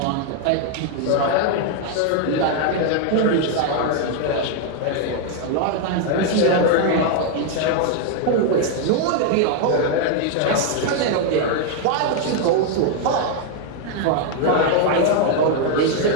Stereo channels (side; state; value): both; different; correlation 0.00